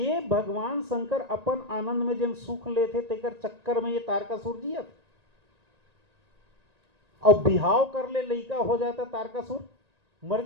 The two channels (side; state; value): left; late; 1.9 ms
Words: भगवान शंकर अपन आनंद में जन सुख लेते तेकर चक्कर में ये तारकासुर जियत, और बिहाव कर ले लइका हो जाता तारकासुर मर